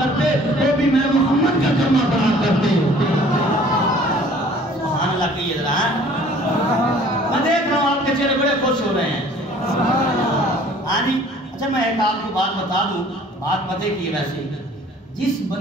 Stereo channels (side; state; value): both; normal; correlation 0.53